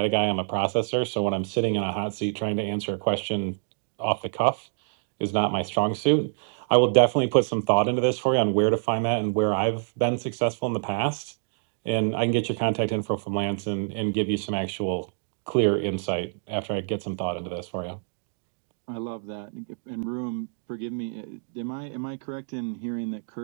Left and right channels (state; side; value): silent; left; digital silence